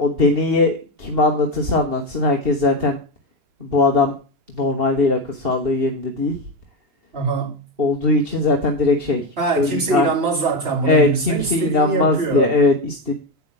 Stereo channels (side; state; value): left; late; 3.0 ms